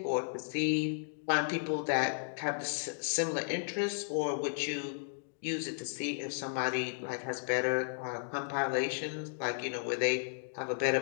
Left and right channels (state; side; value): silent; right; digital silence